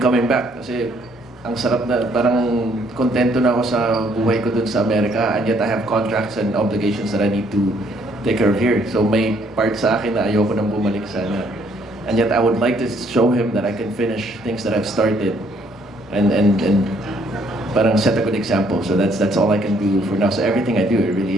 coming back, kasi ang sarap na, parang kontento na ako sa buhay ko dun sa Amerika, and yet I have contracts and obligations that I need to take care of here. So may part sa akin na ayoko nang bumalik sana. And yet I would like to show him that I can finish things that I've started and parang set a good example. So that's all I can do for now. So everything I do, it really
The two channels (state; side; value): normal; both; correlation 0.66